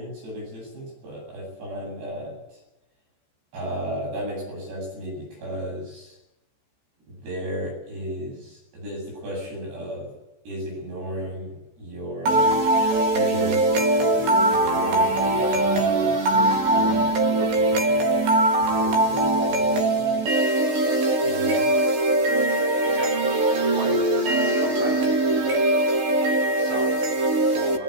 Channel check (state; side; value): late; left; 14 ms